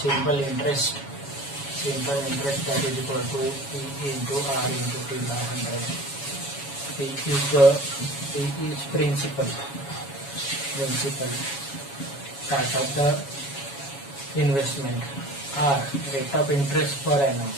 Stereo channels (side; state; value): right; late; 7.2 ms